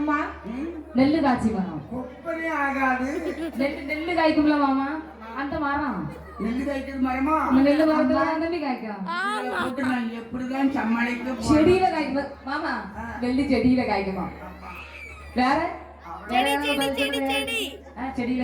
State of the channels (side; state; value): both; identical; correlation 1.00